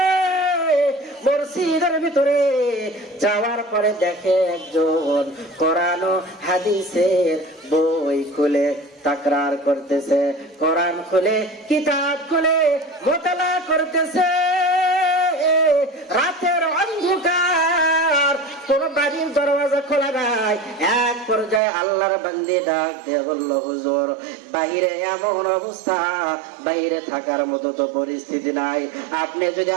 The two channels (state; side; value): drops out; left; at 21.6 s